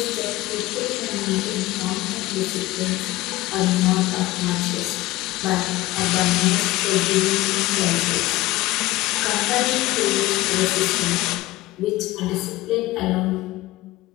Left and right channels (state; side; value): quieter; right; 18.4 dB